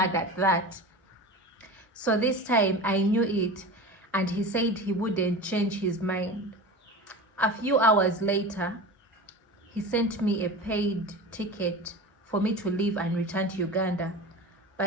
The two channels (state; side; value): normal; both; correlation 0.31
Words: at that. So this time I knew it, and he said he wouldn't change his mind. A few hours later, he sent me a paid ticket for me to leave and return to Uganda.